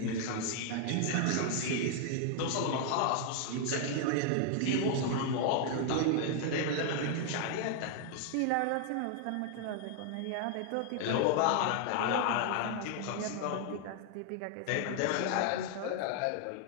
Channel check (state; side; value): different; both; correlation 0.00